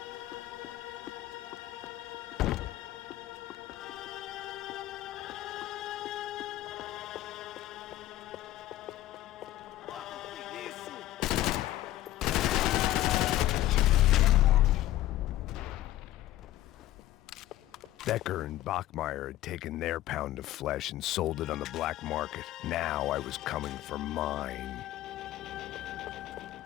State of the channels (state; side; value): quieter; right; 14.7 dB